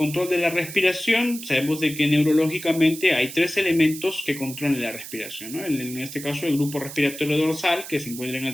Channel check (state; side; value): noise; right; hiss, 12 dB below the sound